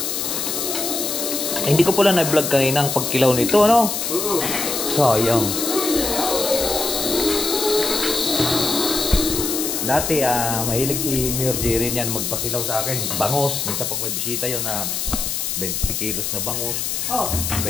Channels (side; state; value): left; noise; hiss, 2 dB below the sound